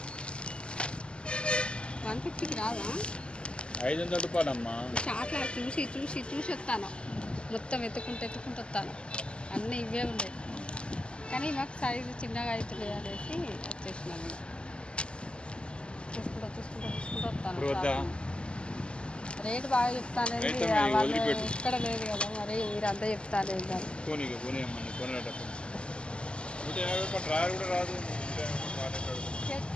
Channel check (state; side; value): late; right; 0.052 ms